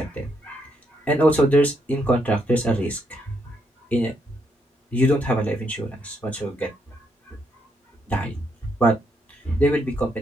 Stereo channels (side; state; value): both; normal; correlation 0.76